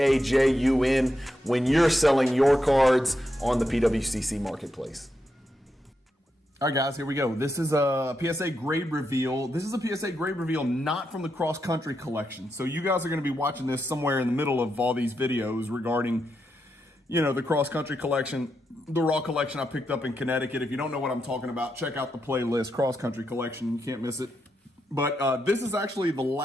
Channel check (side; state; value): both; normal; correlation 0.84